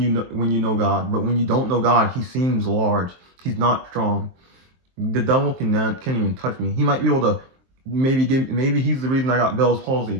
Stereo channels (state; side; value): late; left; 23 ms